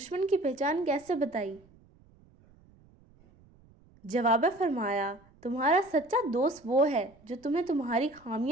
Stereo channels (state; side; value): noise; right; rumble, 28 dB below the sound